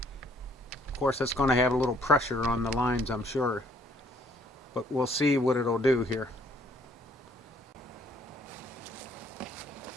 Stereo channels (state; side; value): normal; both; correlation 0.64